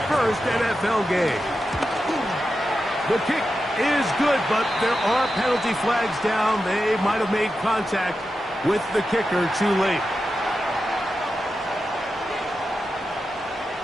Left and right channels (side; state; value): both; normal; correlation 0.90